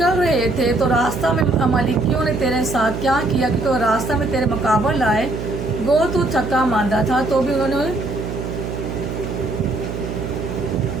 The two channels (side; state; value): right; noise; hum, 5 dB below the sound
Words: रहे थे तो रास्ता में अमालेकियों ने तेरे साथ क्या किया, क्योंकि वो रास्ता में तेरे मुकाबले आए। गो तू थका मांदा था तो भी उन्होंने